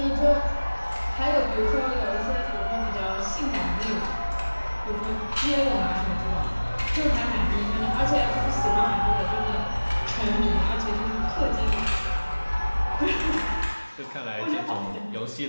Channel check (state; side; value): inverted; both; correlation -1.00